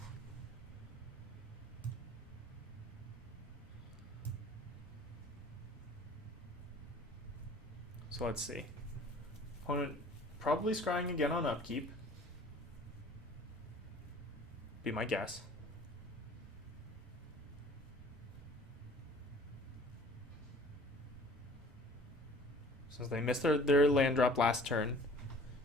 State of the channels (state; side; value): normal; both; correlation 0.49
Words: So let's see. Opponent probably scrying again on upkeep. Be my guess. Since they missed their land drop last turn,